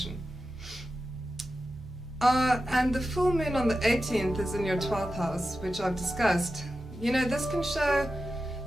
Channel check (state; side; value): normal; both; correlation 0.92